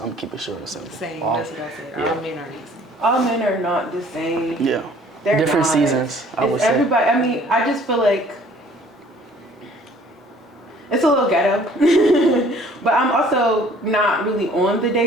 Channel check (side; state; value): both; normal; correlation 0.55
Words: I'm gonna keep it short and simple. Same. All, That's what I said. yeah. All men are the same. All men are not the same. Yeah. They're Different not. seasons, I would It's say. everybody. I mean, I just feel like it's a little ghetto, but I'm also not really on the